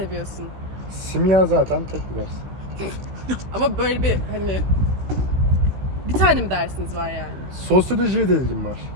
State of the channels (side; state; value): left; late; 16 ms